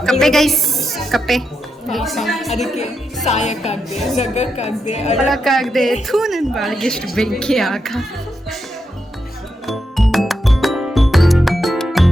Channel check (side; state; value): both; normal; correlation 0.85